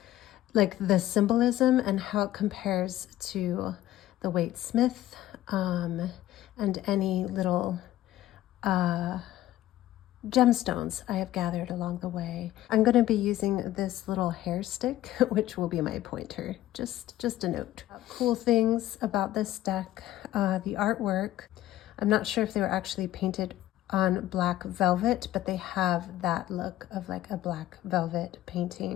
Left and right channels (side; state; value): right; quieter; 14.2 dB